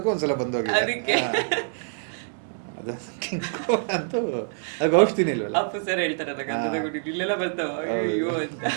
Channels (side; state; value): left; silent; digital silence